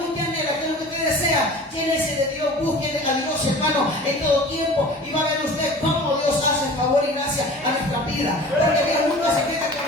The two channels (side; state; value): both; normal; correlation 0.41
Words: usted anhela? ¿Qué es lo que usted desea? Llénese de Dios, busque a Dios, hermano, en todo tiempo, y va a ver usted cómo Dios hace favor y gracia a nuestra vida, porque Dios nunca se queda con